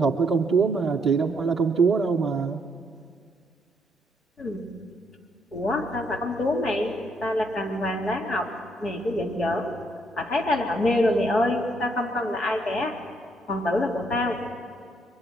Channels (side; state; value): both; normal; correlation 0.72